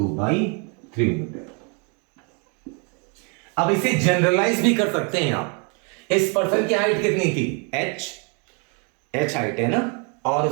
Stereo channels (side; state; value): left; quieter; 35.9 dB